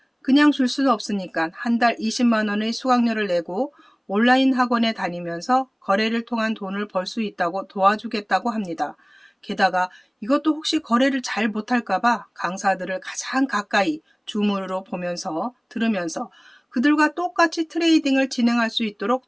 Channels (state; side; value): identical; both; correlation 1.00